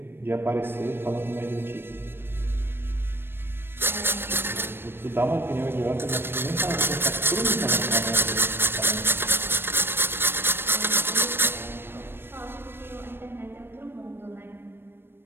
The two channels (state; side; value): late; left; 0.10 ms